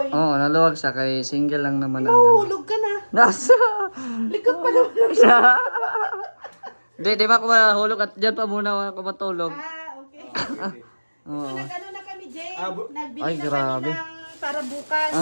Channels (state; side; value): inverted; both; correlation -1.00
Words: Oo, naluwag siya kay single lang naman ang ano. Mahulog ka na. Nasa. Likod pa naman. Di ba ako mahulog at dyan pa muna ako matulog. Okay. Oo. So, nag-ano na kami, Jay. Nagbili Ay, na grabe. kami ng para bukas.